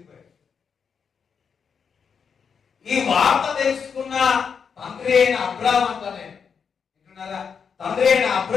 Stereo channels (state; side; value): quieter; right; 6.4 dB